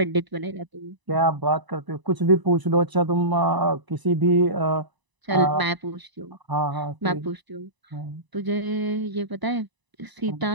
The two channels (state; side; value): late; left; 1.0 ms